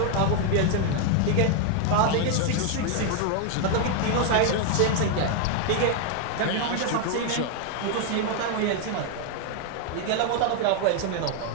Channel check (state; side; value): different; both; correlation 0.00